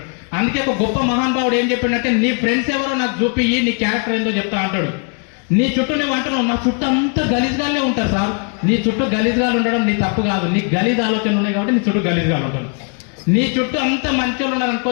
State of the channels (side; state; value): right; quieter; 39.5 dB